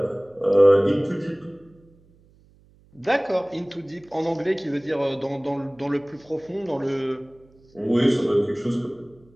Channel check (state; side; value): noise; right; hum, 30 dB below the sound